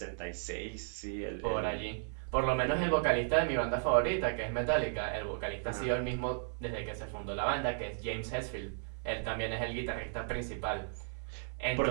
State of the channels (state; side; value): silent; left; 55 dB below the other